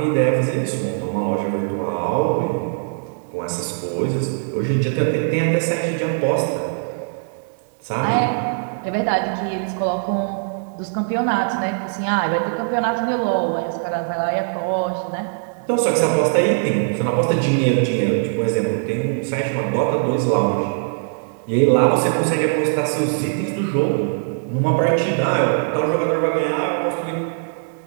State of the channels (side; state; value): left; silent; 65 dB below the other